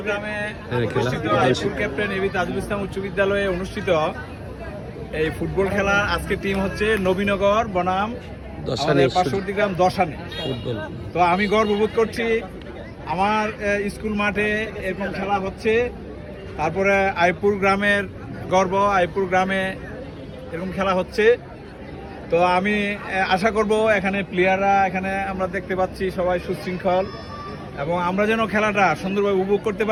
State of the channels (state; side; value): identical; both; correlation 1.00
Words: ক্যাপ্টেন এবি তাজুল ইসলাম উচ্চ বিদ্যালয়ে অনুষ্ঠিত এই ফুটবল খেলা আজকে টিম হচ্ছে নবীনগর বনাম পার্শ্ববর্তী গ্রাম দশানি ফুটবল। তো আমি গর্ববোধ করছি আমার স্কুল মাঠে এরকম খেলা হচ্ছে। তারপরে আইপুর গ্রামের গর্ব, আইপুর গ্রামে এরকম খেলা হচ্ছে। তো আমি আশা করব এখানে প্লেয়াররা, এখানে আমরা দেখতে পাচ্ছি সবাই সুশৃঙ্খল এবং আমরা যেন খেলাটা সুন্দরভাবে উপভোগ করতে